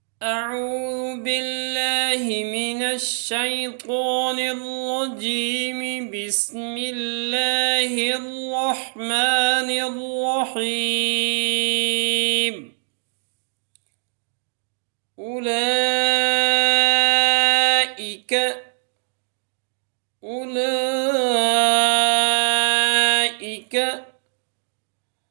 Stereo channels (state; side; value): silent; left; digital silence